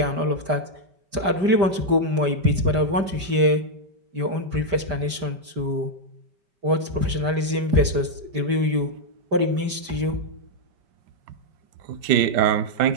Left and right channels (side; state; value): left; late; 5.0 ms